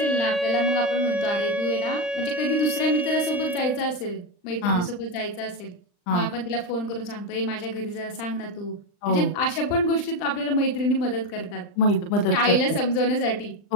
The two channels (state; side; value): late; right; 39 ms